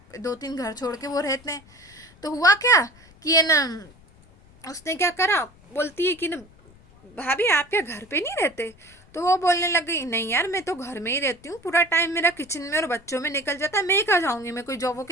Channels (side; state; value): left; noise; rumble, 26 dB below the sound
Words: 2-3 घर छोड़ के वो रहते हैं। तो हुआ क्या कि है ना उसने क्या करा, बोलती है कि ना भाभी आप क्या घर पे नहीं रहते, तो वो बोलने लग गई नहीं यार मैं तो घर में ही रहती हूँ, पूरा टाइम मेरा किचन में और बच्चों में निकल जाता है, मैं कहाँ जाऊँगी, मैं कोई